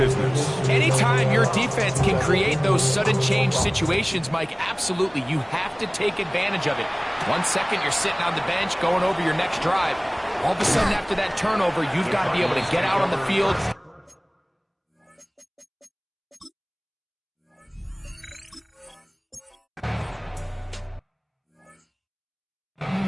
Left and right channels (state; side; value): identical; both; correlation 1.00